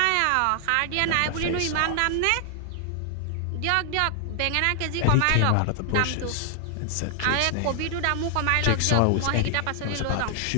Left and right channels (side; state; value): both; different; correlation 0.00